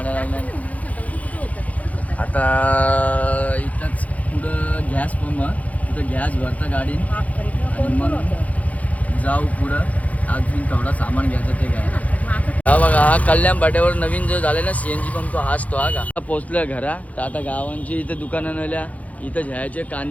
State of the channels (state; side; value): late; right; 0.070 ms